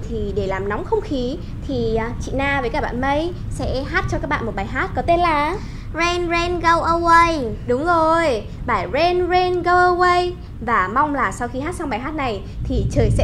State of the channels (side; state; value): both; identical; correlation 1.00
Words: thì để làm nóng không khí thì chị Na với cả bạn Mây sẽ hát cho các bạn một bài hát có tên là Rain Rain Go Away. Đúng rồi, bài Rain Rain Go Away. Và mong là sau khi hát xong bài hát này thì trời